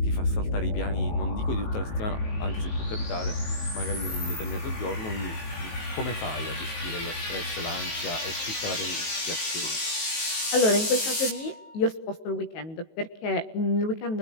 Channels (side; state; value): right; late; 19 ms